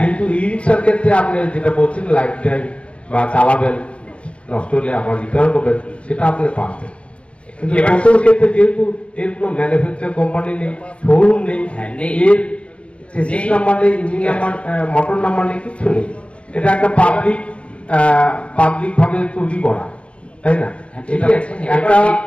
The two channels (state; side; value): late; right; 0.062 ms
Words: ই রিক্সার ক্ষেত্রে আপনি যেটা বলছেন লাইফ টাইম বা চালাবেন, নষ্ট হলে আবার রিটার্ন করবেন, সেটা আপনি পাবেন। কিন্তু টোটোর ক্ষেত্রে যেহেতু এর কোনো ম্যানুফ্যাকচার কোম্পানি নেই, শোরুম নেই, এর চেসিস নাম্বার নেই, ইঞ্জিন নাম্বার, মোটর নাম্বার নেই, কিছু নেই। এটা একটা পাবলিক ভাবে তৈরি করা, তাই না? এটা একটা